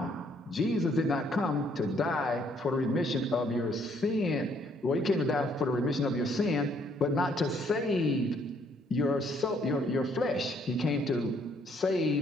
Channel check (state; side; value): normal; both; correlation 0.67